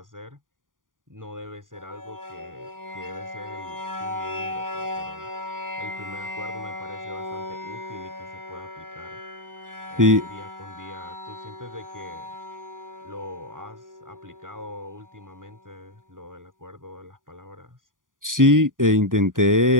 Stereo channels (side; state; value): left; late; 0.89 ms